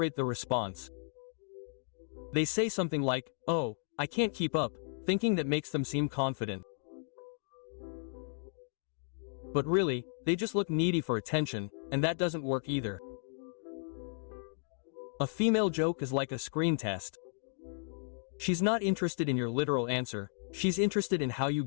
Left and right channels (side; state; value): right; silent; digital silence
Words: the response. They say something like, "Oh, I can't keep up," thinking that makes them seem confident. But really, they just look needy for attention, and that doesn't work either. A female joke is like a screen test. She's not interested in your literal answer, she's interested in how you